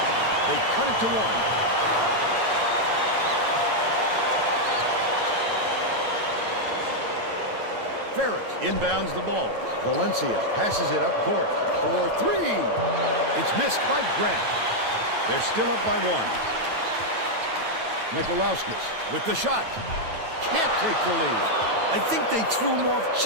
They cut it to one. Ferris inbounds the ball. Valencia passes it up court for three. It's missed by Grant. They're still up by one. Mikalauskis with the shot. Can't take the lead. I think they threw him off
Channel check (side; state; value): left; late; 9.1 ms